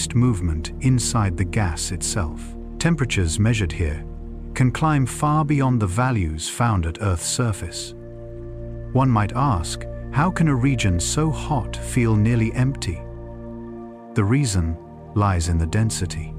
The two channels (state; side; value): identical; both; correlation 1.00